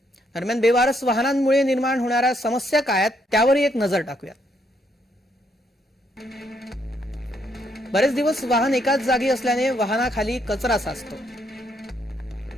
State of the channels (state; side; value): normal; both; correlation 0.73